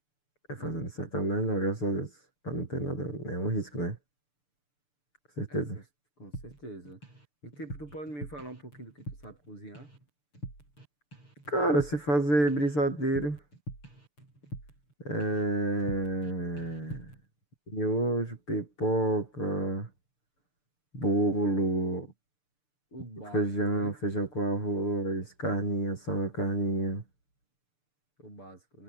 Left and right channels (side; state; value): right; late; 6.8 ms